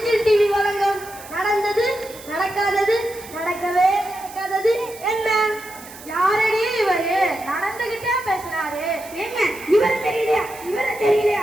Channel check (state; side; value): noise; right; hiss, 17 dB below the sound